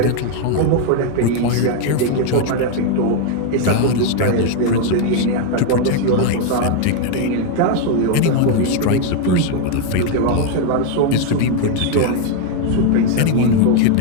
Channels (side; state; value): both; different; correlation 0.01